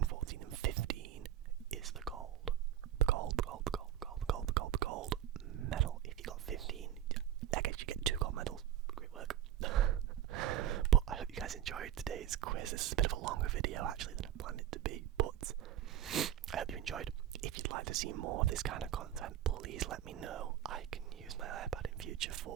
14 and 15 is the gold. The gold medal. If you got 15, I guess you get 2 gold medals. Great work. But I hope you guys enjoyed today's quiz. This is a bit of a longer video actually than I planned it to be, but I hope you enjoyed. If you'd like to see more of this kind of content, please let me know. I can use my iPad in future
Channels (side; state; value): left; quieter; 11.1 dB